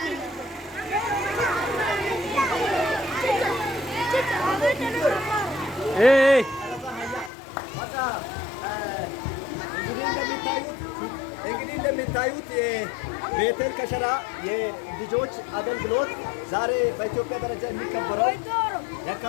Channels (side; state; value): right; drops out; at 7.3 s